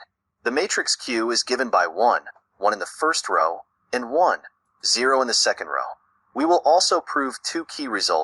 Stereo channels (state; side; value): identical; both; correlation 1.00